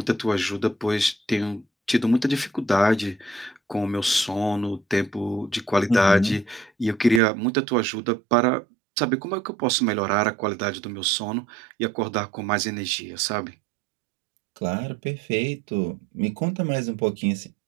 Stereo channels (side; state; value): left; drops out; at 7.2 s